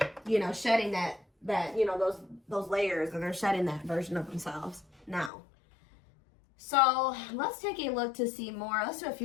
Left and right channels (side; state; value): right; drops out; at 5.3 s